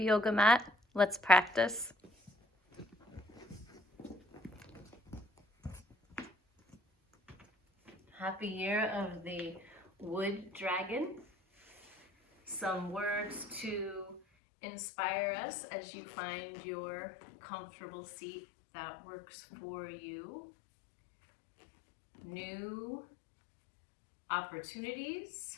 yoga mat, let's practice. Happy year of the wood dragon. Some words to inspire us as you find your comfortable seat that works for you. New opportunities,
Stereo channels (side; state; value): right; drops out; at 14.2 s